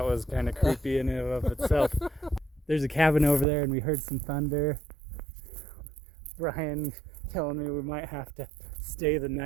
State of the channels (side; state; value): left; drops out; at 3.5 s